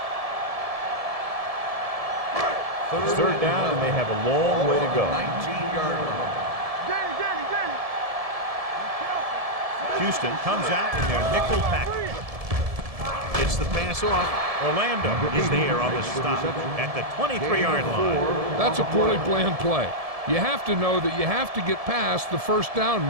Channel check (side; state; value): left; late; 1.7 ms